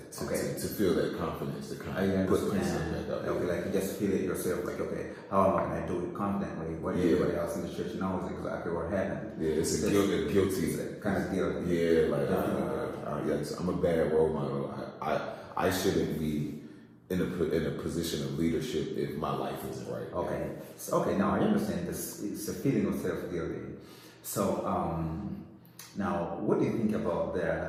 To feel that confidence to kind of put myself back out. Okay, like you just feel it yourself, like, okay, how am I going to do it confidently? What everybody else in the church knows exactly what happened. Yeah, it's a guilty. Kind of guilty. Yeah, like I'm a bad role model. I shouldn't be in a position of leadership if my life isn't right. Okay, now I understand this. It's a feeling of self-guilty. So now, what do you think about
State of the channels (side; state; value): both; identical; correlation 1.00